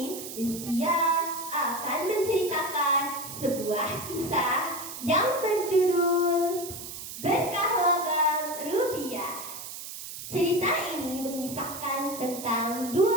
Rizkia akan menceritakan sebuah kisah yang berjudul Berkah Logam Rupiah. Cerita ini mengisahkan tentang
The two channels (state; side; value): noise; right; hiss, 10 dB below the sound